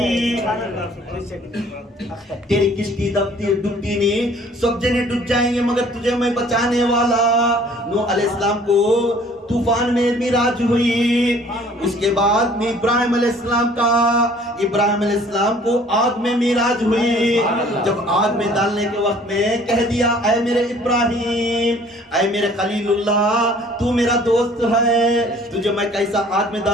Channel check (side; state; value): both; normal; correlation 0.54